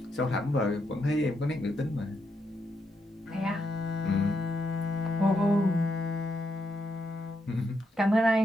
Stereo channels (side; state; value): both; normal; correlation 0.81